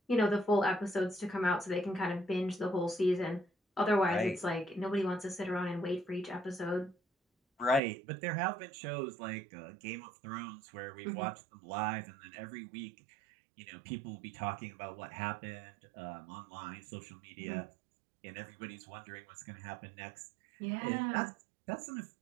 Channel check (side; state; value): left; drops out; at 7.8 s